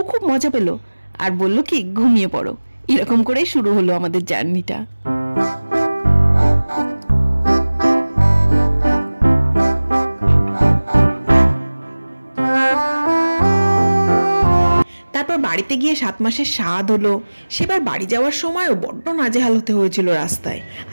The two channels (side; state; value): both; inverted; correlation -1.00